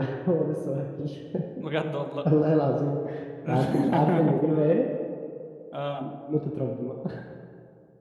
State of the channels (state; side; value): identical; both; correlation 1.00